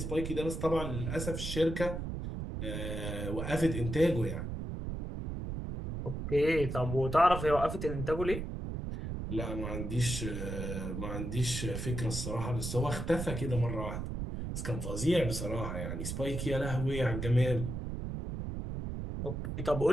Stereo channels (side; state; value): right; noise; rumble, 4 dB below the sound